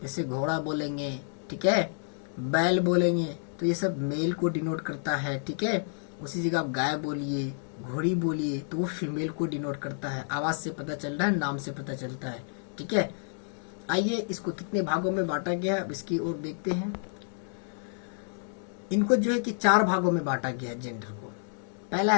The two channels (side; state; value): right; silent; digital silence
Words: जैसे घोड़ा बोलेंगे, ठीक है, बैल बोलेंगे, तो ये सब मेल को डिनोट करता है, ठीक है। उसी जगह आप गाय बोलिए, घोड़ी बोलिए, तो वो फीमेल को डिनोट करता है। आवाज से पता चल रहा है, नाम से पता चलता है, ठीक है। आइए इसको कितने भागों में बांटा गया है अब इसकी ओर देखते हैं। इनको जो है कि 4 भागों में बांटा गया है जेंडर को। पहला